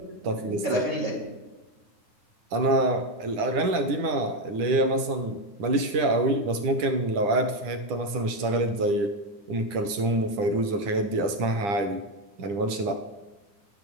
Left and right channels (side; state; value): left; late; 10 ms